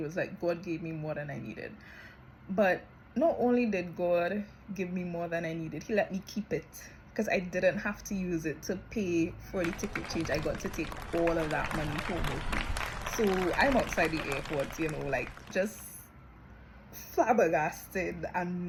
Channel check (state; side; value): identical; both; correlation 1.00